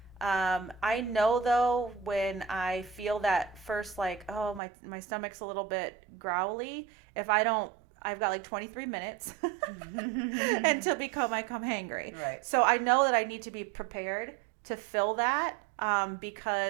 I know though when I feel that first, like, oh, my stomach's a little bit growly. If I don't, I've got like 23 minutes until I come hangry. Right. So I know that I need to be prepared to fill that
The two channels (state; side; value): drops out; left; at 4.6 s